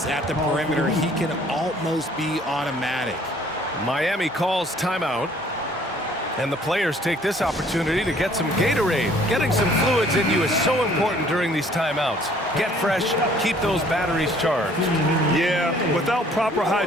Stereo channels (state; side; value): normal; both; correlation 0.58